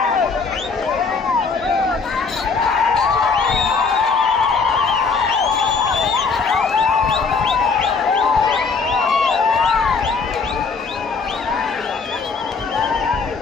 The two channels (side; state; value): right; quieter; 4.9 dB